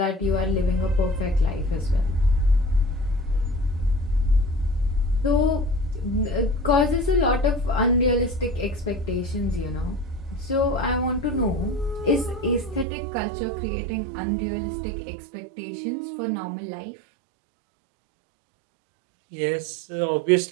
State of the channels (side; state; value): left; drops out; at 12.9 s